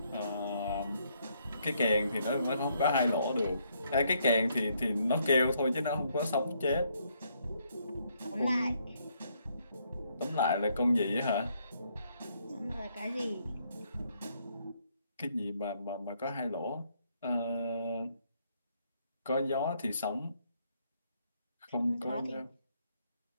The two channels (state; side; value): inverted; both; correlation -0.72